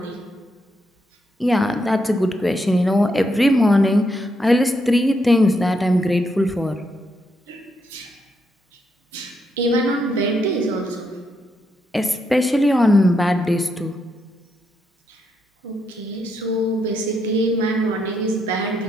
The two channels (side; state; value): both; normal; correlation 0.79